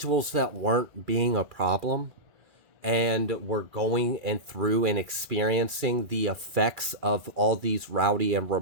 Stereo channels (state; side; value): late; left; 2.4 ms